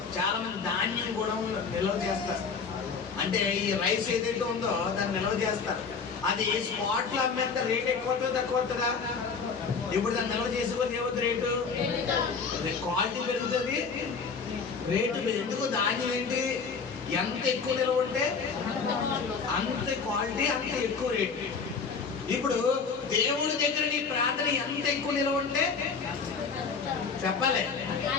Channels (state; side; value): quieter; right; 5.4 dB